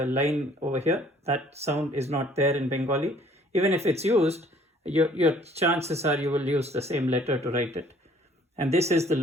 line over here, that sound is not there in Bengali. Even if it's used, your chances are you will use the same letter to write it. And this is the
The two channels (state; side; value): normal; both; correlation 0.57